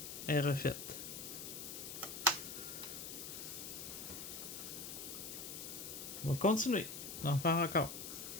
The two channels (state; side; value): noise; left; hiss, 7 dB below the sound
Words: est refaite. On va continuer d'en faire encore.